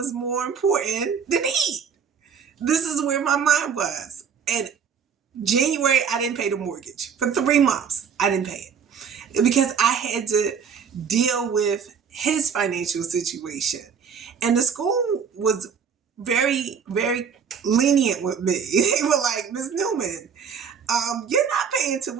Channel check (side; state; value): left; quieter; 6.8 dB